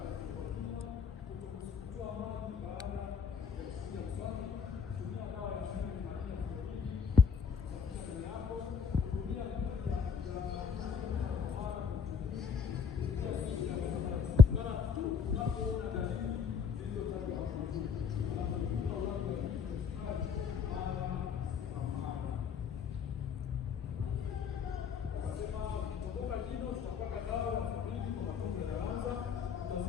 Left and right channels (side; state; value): right; quieter; 6.1 dB